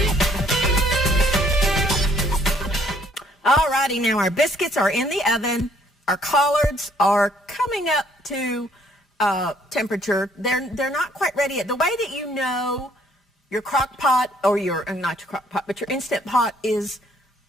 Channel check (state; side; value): normal; both; correlation 0.64